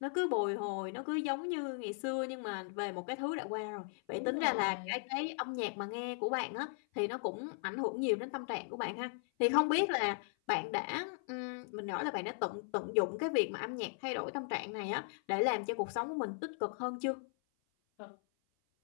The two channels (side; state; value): right; silent; 53 dB below the other